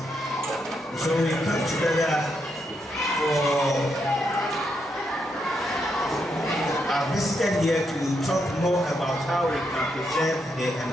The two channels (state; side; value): normal; both; correlation 0.80